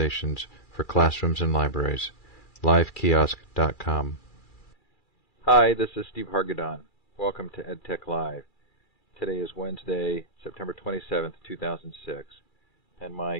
for classrooms and libraries. LiveKiosk.com. Hi, this is Steve Hargadon. Welcome to EdTech Live. Today is Wednesday, September 27th, 2006, and my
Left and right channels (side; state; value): right; late; 2.4 ms